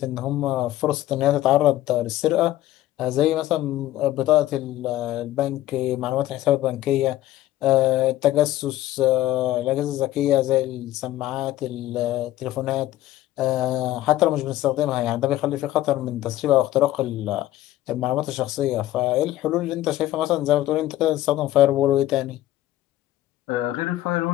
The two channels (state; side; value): quieter; right; 14.7 dB